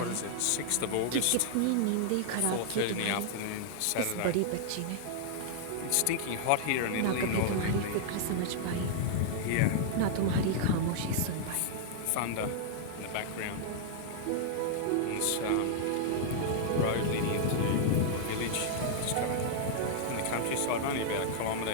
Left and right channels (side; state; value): both; different; correlation -0.01